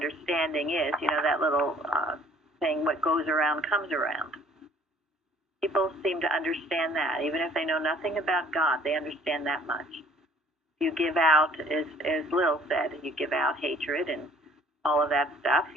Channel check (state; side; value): normal; both; correlation 0.56